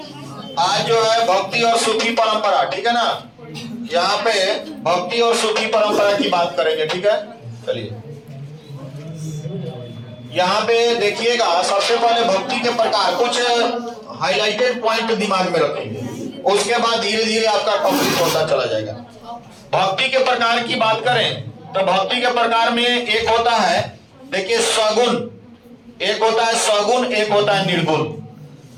आज जो है भक्ति और सूफी परंपरा, ठीक है ना। यहाँ पे भक्ति और सूफी परंपरा की बात करेंगे, ठीक है। चलिए यहाँ पे देखिएगा, सबसे पहले भक्ति के प्रकार कुछ हाइलाइटेड पॉइंट दिमाग में रखेंगे, उसके बाद धीरे धीरे आपका कंप्लीट होता चला जाएगा। भक्ति के प्रकार की बात करें तो भक्ति के प्रकार में एक होता है, देखिए सगुण, एक होता है सगुण, एक होता है निर्गुण।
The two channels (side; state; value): both; identical; correlation 1.00